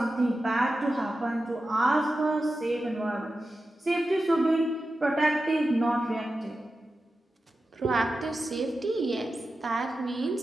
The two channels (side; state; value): both; normal; correlation 0.92